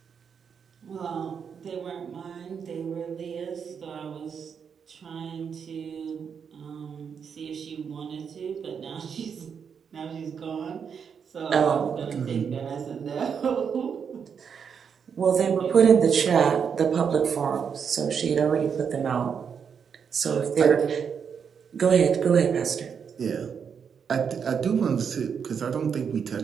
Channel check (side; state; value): left; quieter; 6.9 dB